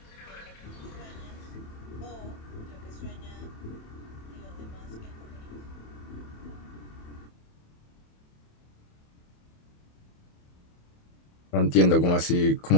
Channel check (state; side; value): late; right; 27 ms